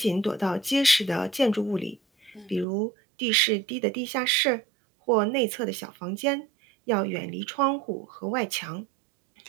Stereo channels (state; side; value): drops out; left; at 2.7 s